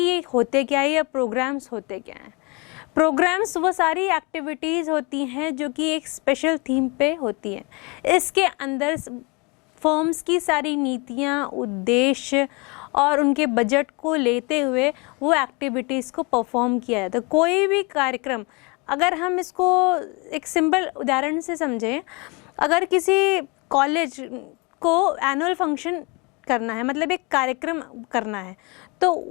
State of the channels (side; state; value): right; quieter; 28.6 dB